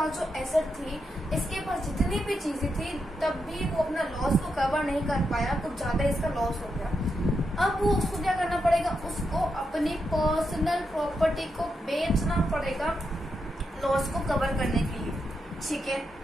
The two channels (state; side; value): normal; both; correlation 0.84